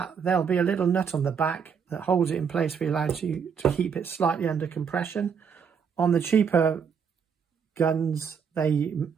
there'll be a little nut on the back that holds it in place for you to keep it slightly under compression. On the cheaper guns, they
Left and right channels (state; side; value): quieter; left; 6.6 dB